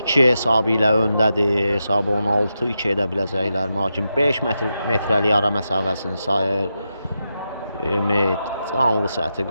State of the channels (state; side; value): inverted; both; correlation -0.87